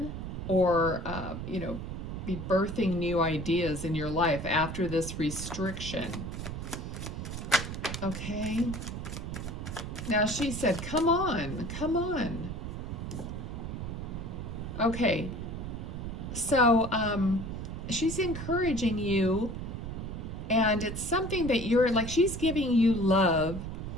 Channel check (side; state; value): right; noise; rumble, 6 dB below the sound